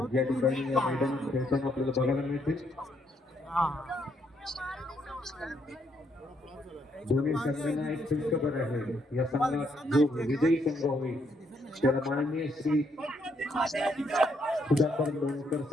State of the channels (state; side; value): normal; both; correlation 0.73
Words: या ठिकाणी या मैदानात खेळताना आपल्याला बघायला मिळतील. दोन्ही संघांना एक खुशखबर आहे. या संघात जो विजयी संघ होईल त्याला माननीय श्री सुधाकर लोणकर